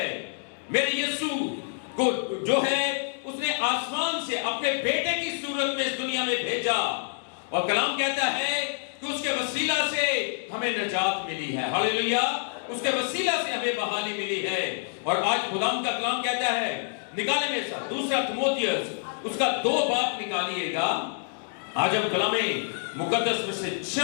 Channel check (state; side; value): silent; right; digital silence